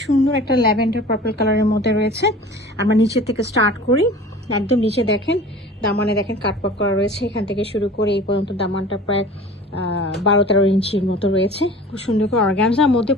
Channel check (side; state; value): both; normal; correlation 0.41